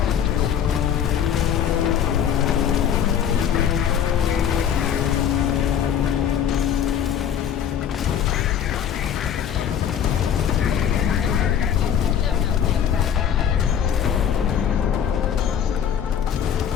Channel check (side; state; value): right; quieter; 8.9 dB